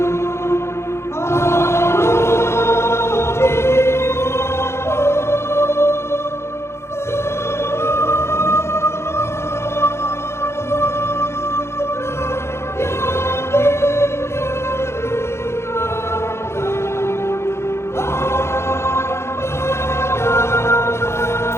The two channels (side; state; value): right; late; 0.13 ms